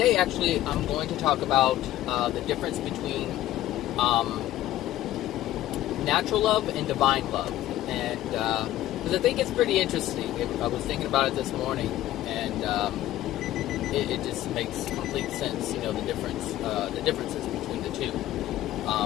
actually I'm going to talk about the difference between natural love and divine love. And, because I think it's pretty interesting. I was thinking about it this morning, and it just makes complete sense, the differences between the two.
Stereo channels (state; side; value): quieter; right; 14.2 dB